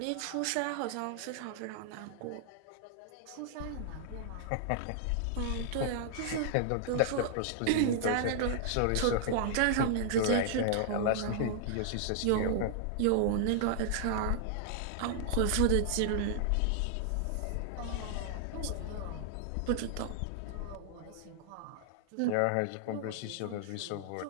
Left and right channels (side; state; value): both; different; correlation -0.01